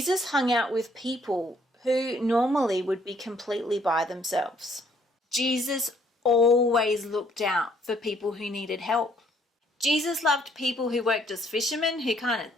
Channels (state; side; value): normal; both; correlation 0.65